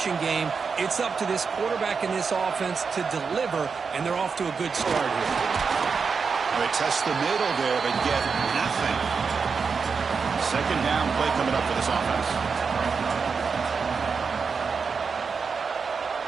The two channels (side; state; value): left; quieter; 5.4 dB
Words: game. It's up to this quarterback and this offense to deliver, and they're off to a good start here. They test the middle there, but get nothing. Second down play coming up for this offense.